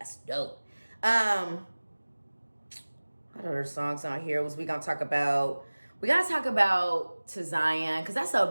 dope. What other songs on here we gotta talk about? We gotta talk about To Zion, because that's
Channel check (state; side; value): inverted; both; correlation -1.00